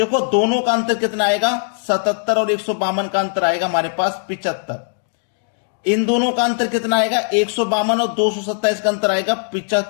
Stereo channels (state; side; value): silent; right; 63 dB below the other